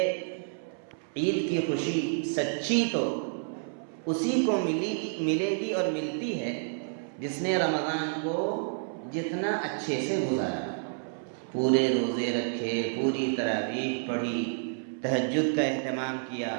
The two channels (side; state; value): left; silent; 58 dB below the other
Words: عید کی خوشی سچی تو اسی کو ملے گی اور ملتی ہے جس نے رمضان کو جتنا اچھے سے گزارا، پورے روزے رکھے، پوری تراویح پڑھی، تہجد کا اہتمام کیا،